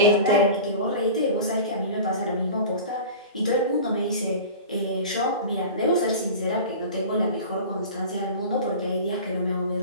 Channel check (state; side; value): inverted; both; correlation -0.35